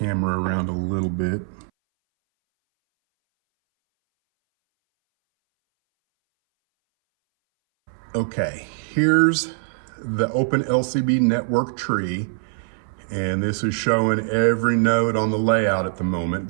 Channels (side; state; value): left; silent; 61 dB below the other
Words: around a little bit. Okay, here's the Open LCB network tree, and this is showing every node on the layout at the moment.